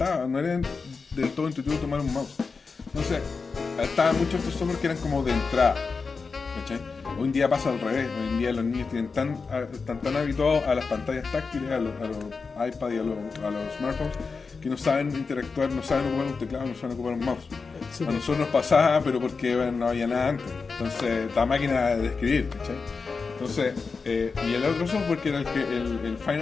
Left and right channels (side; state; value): right; quieter; 4.7 dB